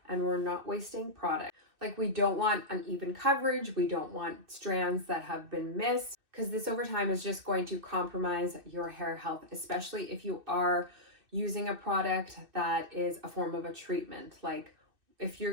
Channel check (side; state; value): left; late; 2.6 ms